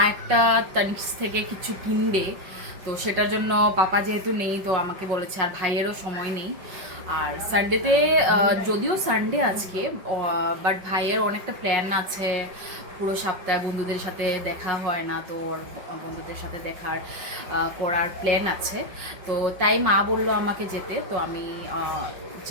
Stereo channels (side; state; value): left; late; 5.4 ms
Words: একটা তানিক্স থেকে কিছু কিনবে, তো সেটার জন্য পাপা যেহেতু নেই, তো আমাকে বলেছে, আর ভাইয়েরও সময় নেই। আর সানডেতে যদিও সানডে আজকে, বাট ভাইয়ের অনেকটা প্ল্যান আছে পুরো সপ্তাহে, বন্ধুদের সাথে দেখা হয় না, তো ওর বন্ধুদের সাথে দেখার করার প্ল্যান আছে। তো তাই মা বললো আমাকে যেতে, তো আমি